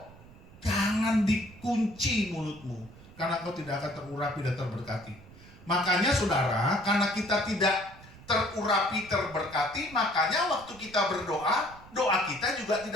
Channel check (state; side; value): noise; right; rumble, 20 dB below the sound